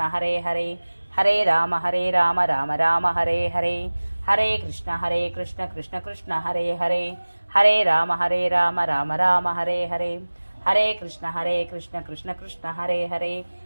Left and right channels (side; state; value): both; inverted; correlation -1.00